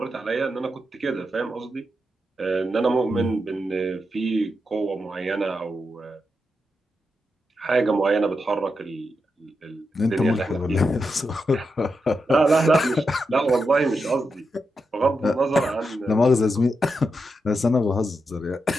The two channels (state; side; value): normal; both; correlation 0.86